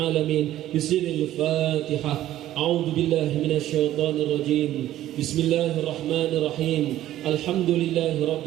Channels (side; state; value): left; quieter; 13.4 dB